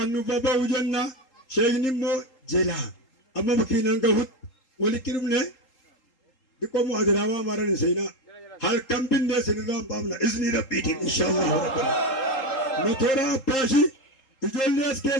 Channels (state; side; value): late; right; 3.8 ms